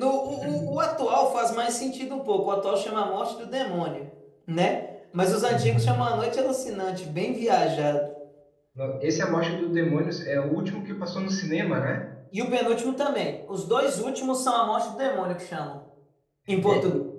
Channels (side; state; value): both; identical; correlation 1.00